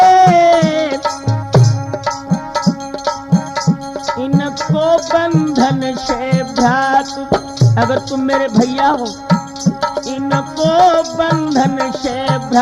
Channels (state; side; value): identical; both; correlation 1.00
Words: बंधन से भ्रात अगर तुम मेरे भैया हो, इनको बंधन से